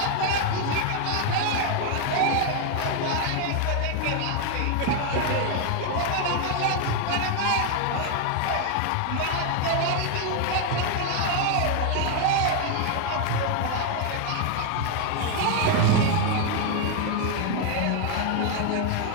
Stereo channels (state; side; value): different; both; correlation 0.00